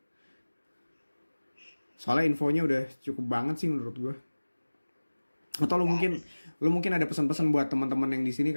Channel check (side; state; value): both; inverted; correlation -1.00